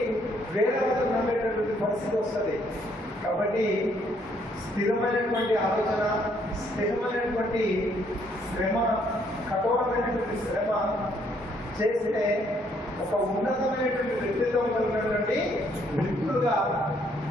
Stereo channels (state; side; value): normal; both; correlation 0.68